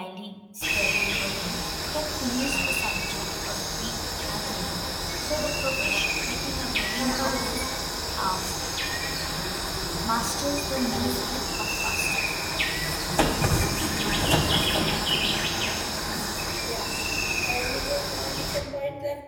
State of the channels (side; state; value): both; identical; correlation 1.00